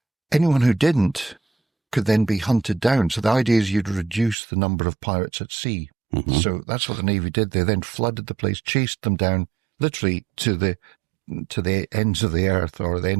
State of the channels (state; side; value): drops out; left; at 4.4 s